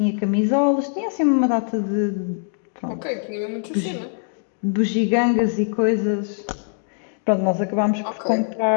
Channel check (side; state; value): right; silent; digital silence